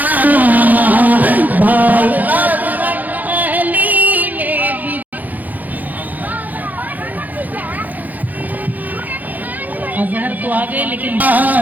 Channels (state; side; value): late; left; 0.084 ms